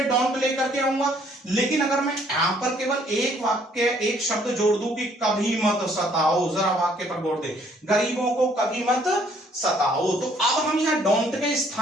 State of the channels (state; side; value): normal; both; correlation 0.63